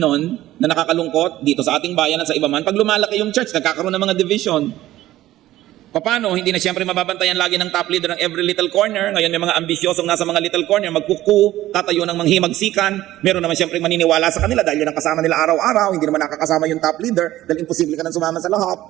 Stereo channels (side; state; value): left; quieter; 14.9 dB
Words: na nakakalungkot dito sa ating bayan at sa iba man, pag lumalaki yung church, nagkakaroon ng mga division. Paano? Hindi na siyempre mababantayan lagi ng top leader ng every little corner. Ngayon may mga ambisyosong nasa mga little corner, magkuku, tatayo ng manghimagsikan. Meron naman siyempre maniniwala sa kanila dahil yun ang kasama nila araw-araw. Hindi naman nakakasama yung top leader dahil imposible ka nang sumama sa lahat.